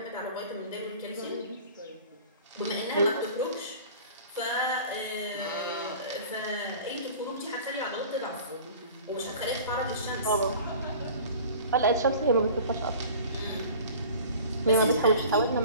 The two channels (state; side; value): inverted; both; correlation -0.43